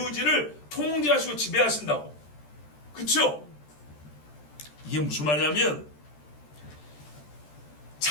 통제하시고 지배하신다고. 그쵸? 이게 무슨 말이냐면,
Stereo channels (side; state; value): right; late; 13 ms